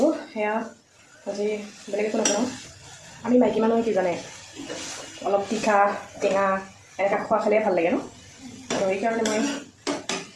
সেয়া আজি বেলেগ একো নকৰোঁ। আমি মাইকী মানুহে কি জানে, অলপ তিখা টেঙা এনেকৈ খোৱা খালে ভাল লাগে ন, তো সেইকাৰণে মই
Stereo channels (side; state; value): both; identical; correlation 1.00